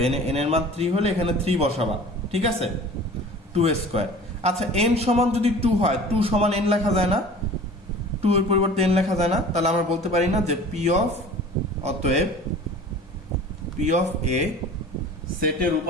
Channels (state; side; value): normal; both; correlation 0.42